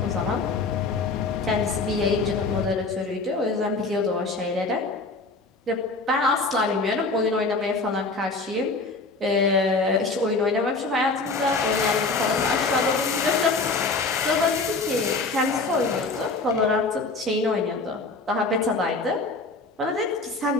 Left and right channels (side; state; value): right; quieter; 3.7 dB